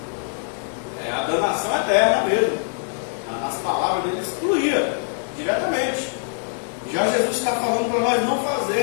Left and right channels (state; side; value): silent; right; digital silence